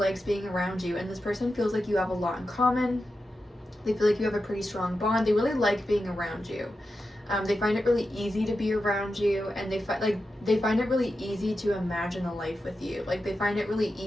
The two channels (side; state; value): both; normal; correlation 0.90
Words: being around you, and this person feels like you have a lot in common. They feel like you have a pretty strong bond. They really like being around you. They find it really easy to be around you, and they find it really easy to imagine a life with you. Like they find it really